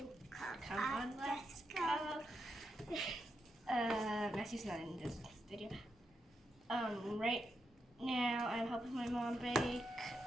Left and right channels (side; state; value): both; normal; correlation 0.84